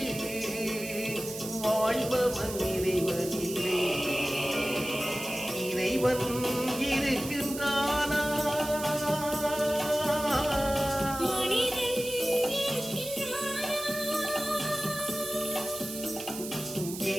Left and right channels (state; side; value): noise; right; hiss, 10 dB below the sound